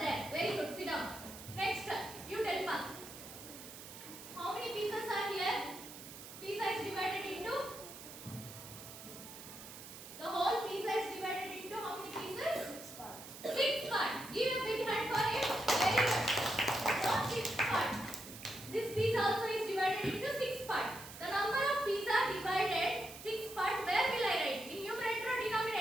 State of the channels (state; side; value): noise; right; hiss, 13 dB below the sound